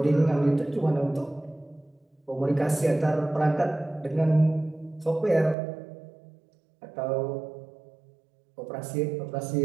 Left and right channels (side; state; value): left; drops out; at 5.6 s